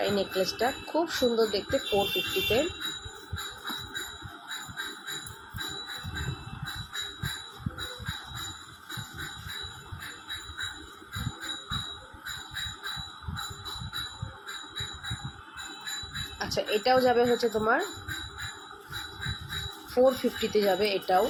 নেকলেসটা খুব সুন্দর দেখতে, 450-তে। আচ্ছা, এটাও যাবে হচ্ছে তোমার 450-তে যাবে এটাও।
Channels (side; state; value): both; identical; correlation 1.00